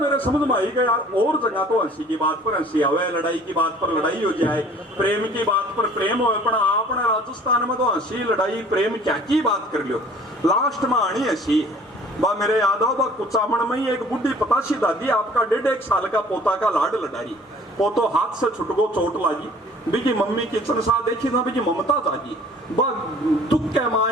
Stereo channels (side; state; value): both; normal; correlation 0.51